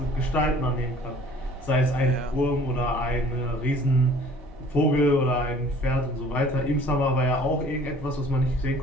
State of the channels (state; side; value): normal; both; correlation 0.51